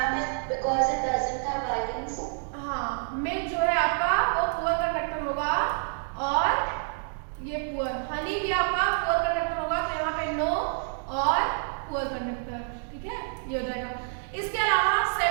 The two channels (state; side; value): silent; left; digital silence